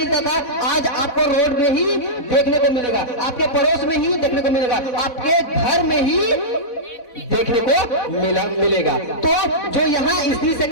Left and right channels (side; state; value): right; late; 4.1 ms